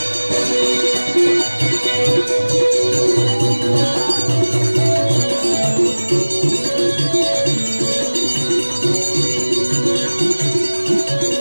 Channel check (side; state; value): both; inverted; correlation -1.00